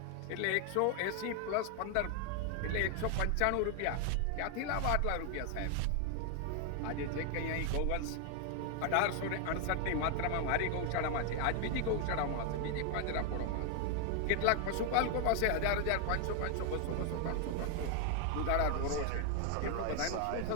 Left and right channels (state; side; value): different; both; correlation 0.00